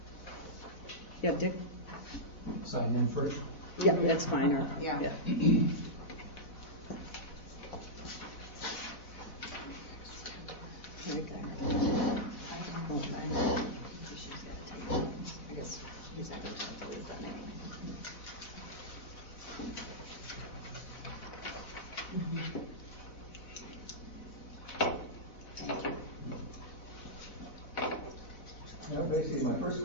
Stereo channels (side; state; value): right; late; 4.0 ms